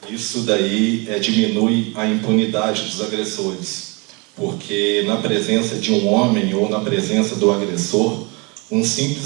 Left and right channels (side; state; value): left; quieter; 29.4 dB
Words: isso daí diminui a impunidade dos agressores, porque na presença de um homem ou na presença do agressor, um